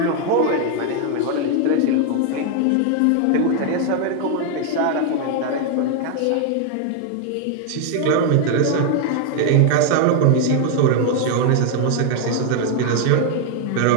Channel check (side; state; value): both; different; correlation 0.00